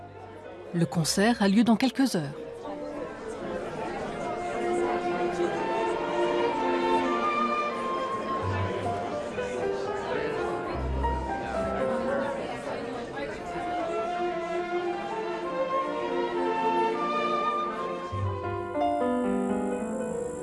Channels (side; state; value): both; identical; correlation 1.00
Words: Le concert a lieu dans quelques heures.